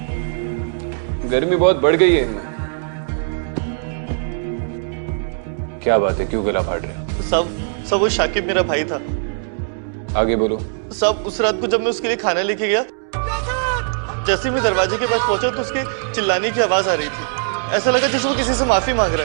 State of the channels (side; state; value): left; silent; digital silence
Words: गर्मी बहुत बढ़ गई है इनमें। क्या बात है, क्यों गला फाड़ रहे हो? सब वो शाकिब मेरा भाई था। आगे बोलो। सब उस रात को जब मैं उसके लिए खाना लेके गया, जैसे मैं दरवाजे के पास पहुंचा तो उसके चिल्लाने की आवाज आ रही थी। ऐसा लगा जैसे वो किसी से माफी मांग